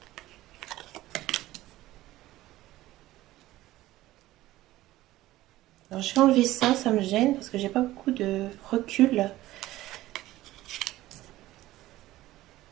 Alors, je vais enlever ça, ça me gêne parce que j'ai pas beaucoup de recul.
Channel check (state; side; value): quieter; left; 16.2 dB